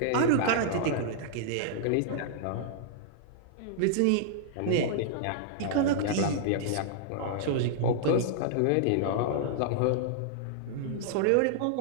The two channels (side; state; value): both; different; correlation -0.02